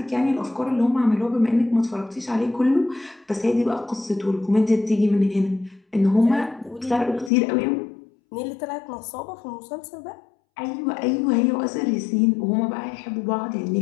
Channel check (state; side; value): drops out; right; at 7.3 s